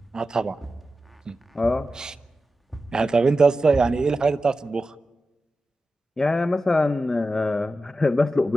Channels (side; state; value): both; normal; correlation 0.92